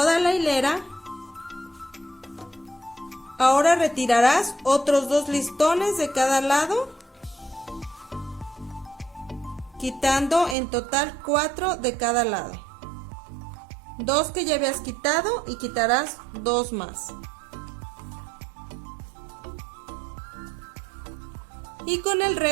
la hilera, ahora retirarás otros 2 listones de cada lado, quitando en total 4 de cada lado. 2 que ya habías quitado y quitarás 2 más. Y con el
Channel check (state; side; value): drops out; left; at 10.6 s